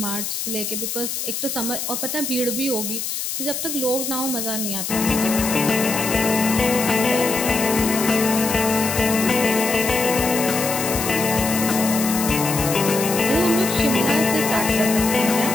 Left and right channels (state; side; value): noise; left; hiss, 4 dB below the sound